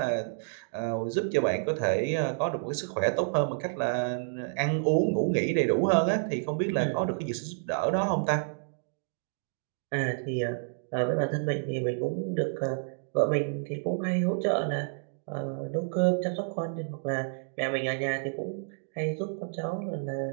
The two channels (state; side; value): silent; left; digital silence